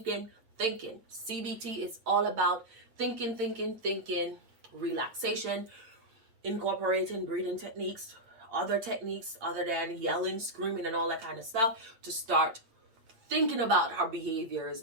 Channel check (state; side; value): late; left; 8.8 ms